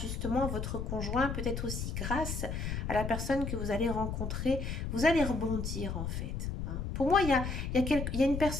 à votre conjoint, peut-être aussi grâce à la personne que vous allez rencontrer, vous allez rebondir en fait. Hein. Pour moi, il y a une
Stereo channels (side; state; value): left; noise; rumble, 3 dB below the sound